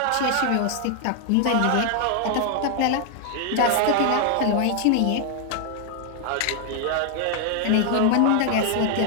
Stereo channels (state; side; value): different; both; correlation 0.00